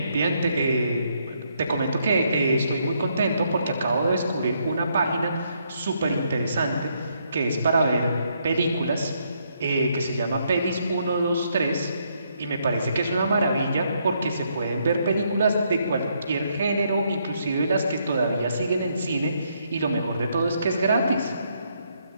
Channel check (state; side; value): inverted; both; correlation -0.74